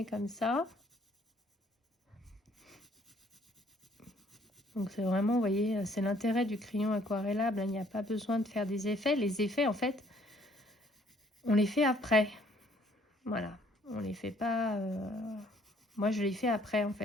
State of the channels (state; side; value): normal; both; correlation 0.62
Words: comme ça. Donc c'est vraiment, vous voyez, c'est l'intérêt du crayon aquarellable. Il n'y a pas besoin de faire des effets. Les effets, en fait, on les fait après. Voilà, on les fait pas... Moi, je les fais après, en